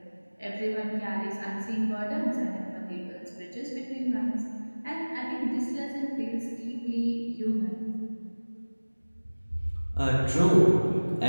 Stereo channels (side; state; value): both; inverted; correlation -1.00